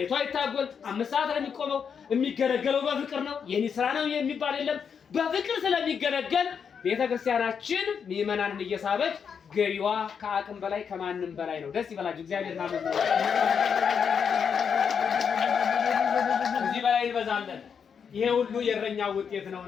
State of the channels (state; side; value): quieter; right; 6.8 dB